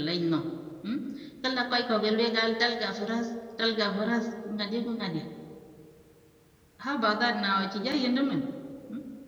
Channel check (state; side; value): identical; both; correlation 1.00